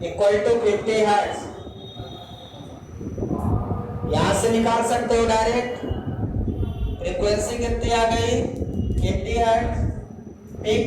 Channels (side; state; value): both; identical; correlation 1.00